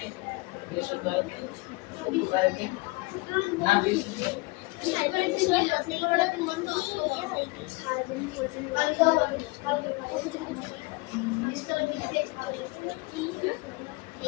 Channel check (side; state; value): right; quieter; 24.6 dB